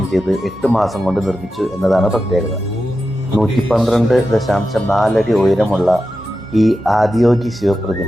ചെയ്ത് 8 മാസം കൊണ്ട് നിർമ്മിച്ചു എന്നതാണ് പ്രത്യേകത. 112.4 അടി ഉയരമുള്ള ഈ ആദിയോഗി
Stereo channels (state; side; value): normal; both; correlation 0.91